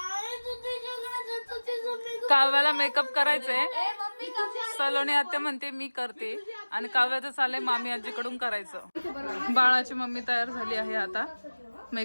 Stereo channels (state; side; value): inverted; both; correlation -1.00